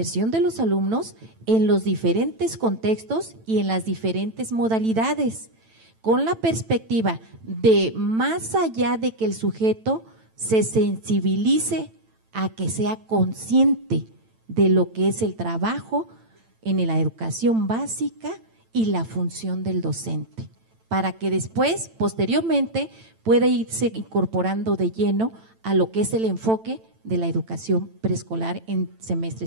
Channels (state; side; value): late; left; 9.0 ms